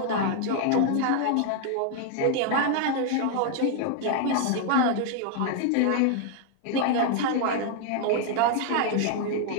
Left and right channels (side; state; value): both; different; correlation 0.00